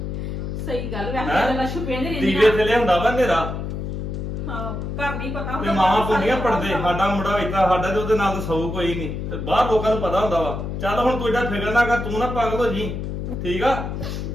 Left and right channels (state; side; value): noise; left; hum, 5 dB below the sound